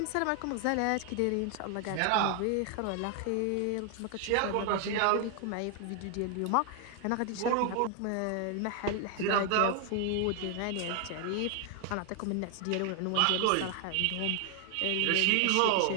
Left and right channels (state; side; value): different; both; correlation 0.00